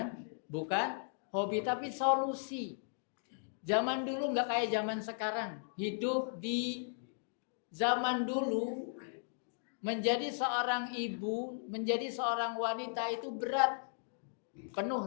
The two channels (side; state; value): right; silent; digital silence